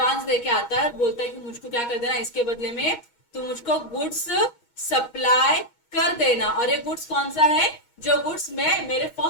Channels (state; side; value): late; right; 6.3 ms